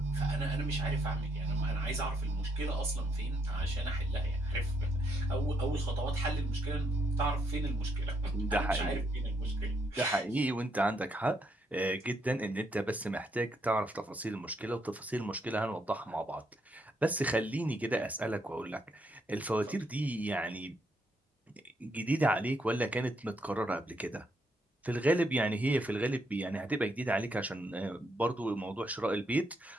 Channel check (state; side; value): normal; both; correlation 0.75